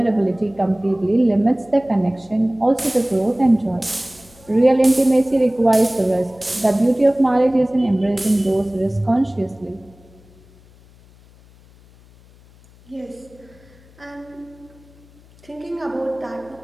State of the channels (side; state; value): left; noise; hum, 26 dB below the sound